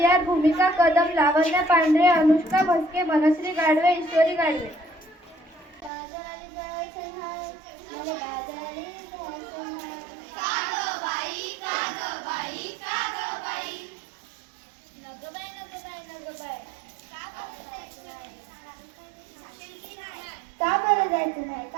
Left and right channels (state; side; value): drops out; left; at 5.9 s